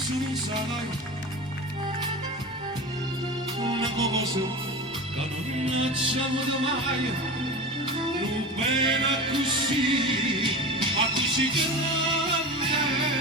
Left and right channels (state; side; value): normal; both; correlation 0.29